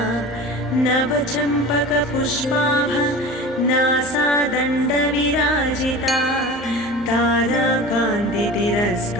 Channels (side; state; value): both; normal; correlation 0.35